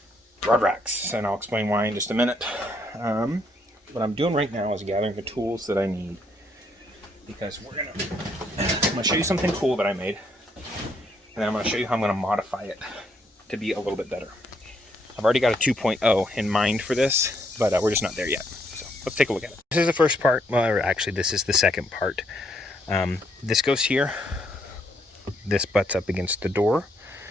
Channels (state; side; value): normal; both; correlation 0.72